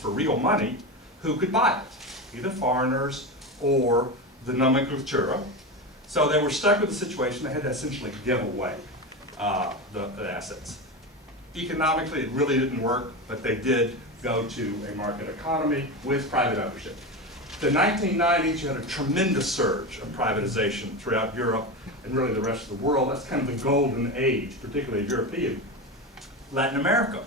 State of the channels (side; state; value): both; normal; correlation 0.20